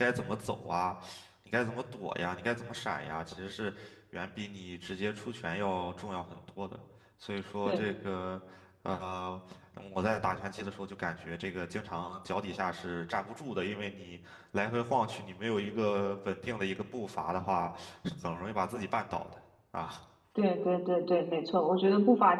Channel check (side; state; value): both; identical; correlation 1.00